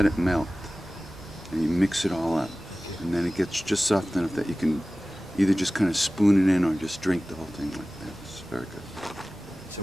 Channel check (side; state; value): both; normal; correlation 0.97